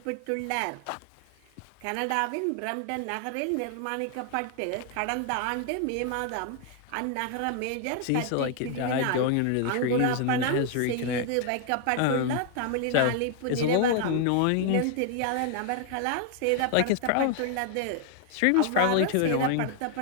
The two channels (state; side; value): different; both; correlation 0.00